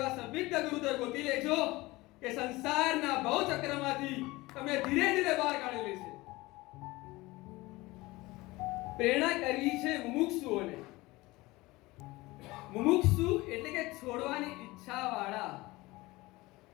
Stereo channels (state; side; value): quieter; right; 20.8 dB